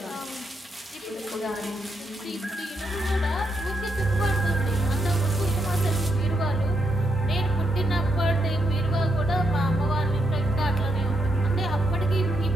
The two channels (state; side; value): normal; both; correlation 0.81